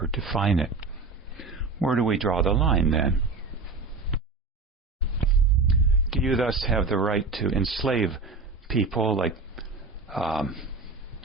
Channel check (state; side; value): quieter; left; 3.9 dB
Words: define it? Where do we draw the line then? Do you thus have the right to enslave people, like